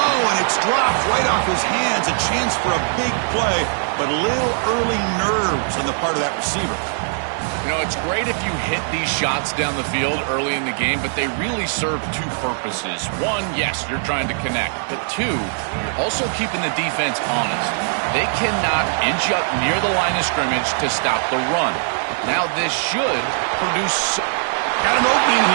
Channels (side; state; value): left; silent; digital silence